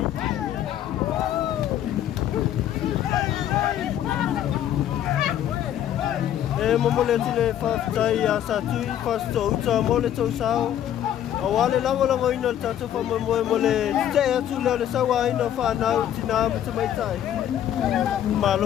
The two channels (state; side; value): quieter; right; 11.0 dB